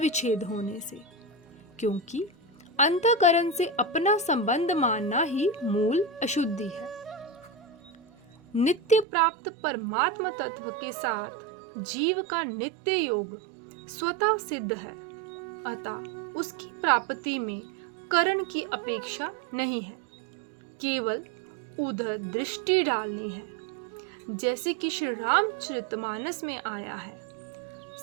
होने से, क्योंकि अंतःकरण से अपना संबंध मानना ही मूल अशुद्धि है। नित्य प्राप्त परमात्मा तत्व के साथ जीव का नित्य योग स्वतः सिद्ध है, अतः उसकी प्राप्ति में करण की अपेक्षा नहीं है, केवल उधर दृष्टि डालनी है। जैसे कि श्री रामचरितमानस में आया है,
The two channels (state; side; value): drops out; left; at 9.1 s